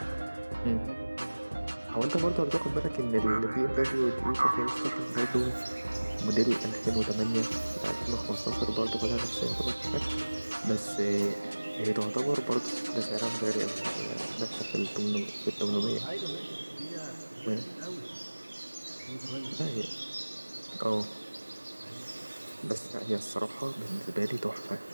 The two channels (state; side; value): inverted; both; correlation -1.00